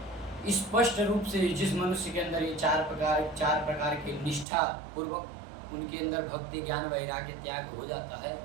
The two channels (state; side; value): drops out; left; at 4.5 s